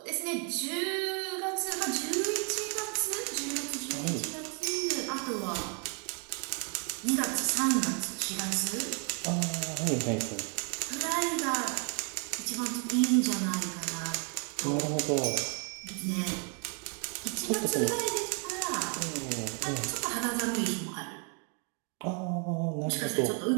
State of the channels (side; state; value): left; quieter; 39.1 dB